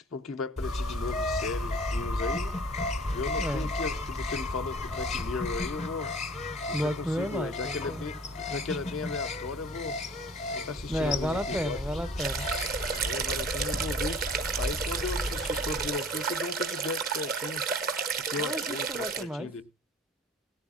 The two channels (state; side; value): normal; both; correlation 0.47